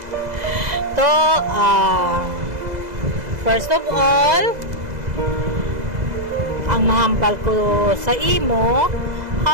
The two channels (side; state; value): left; late; 2.0 ms